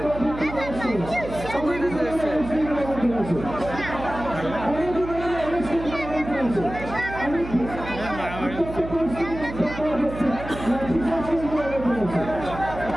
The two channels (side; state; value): right; noise; hum, 10 dB below the sound